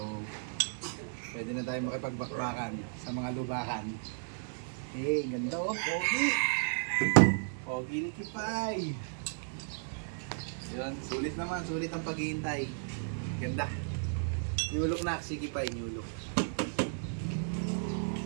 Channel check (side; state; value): left; silent; digital silence